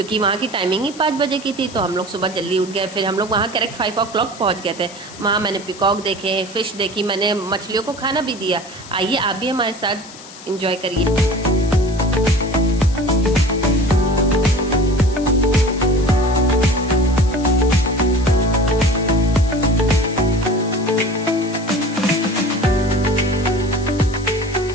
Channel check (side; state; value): left; noise; hiss, 18 dB below the sound